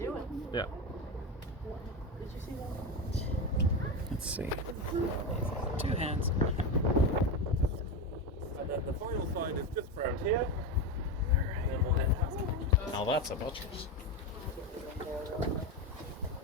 it. Yeah. Did you see that? Let's see. 2 hands. And then the final side is just around here. And then we'll head past. Now that's a buttress.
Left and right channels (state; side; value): normal; both; correlation 0.16